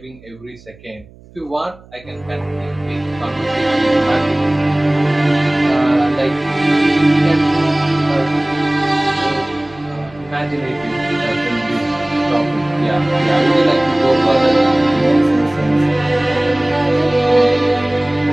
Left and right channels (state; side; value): noise; right; hum, 24 dB below the sound